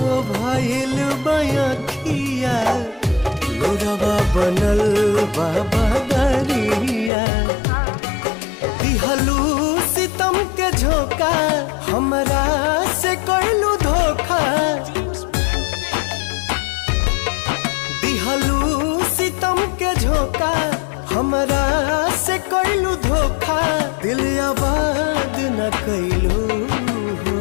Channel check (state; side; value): drops out; right; at 7.1 s